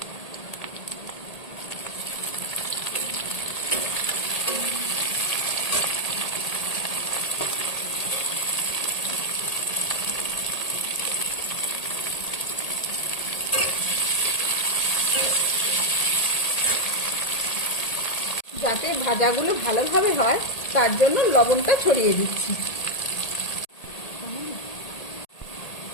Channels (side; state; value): right; late; 1.8 ms